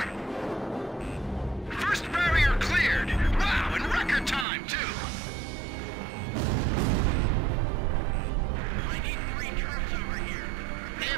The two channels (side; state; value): left; drops out; at 4.5 s